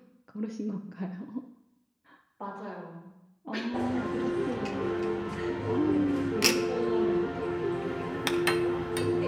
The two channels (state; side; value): identical; both; correlation 1.00